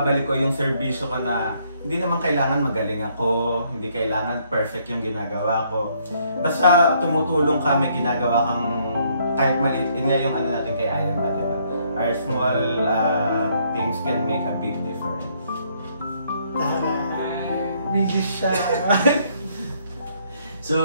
ko yung serbisyo ko na hindi naman kailangan magaling ako, hindi kailangan perfect yung ginagawa ko. Basta tumutulong ka, may ginagawa kang kahit maliit. Yun nga yung ano natin kay I Am MAD, diba? Our small things can make a big difference. Bigis siya.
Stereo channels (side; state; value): both; inverted; correlation -0.68